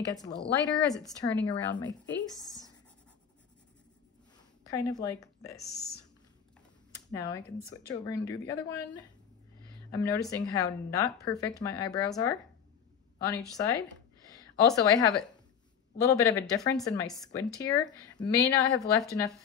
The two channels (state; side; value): quieter; right; 7.7 dB